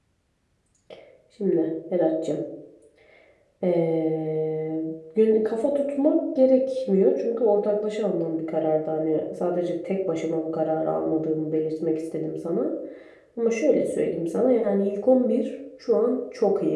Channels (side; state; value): both; identical; correlation 1.00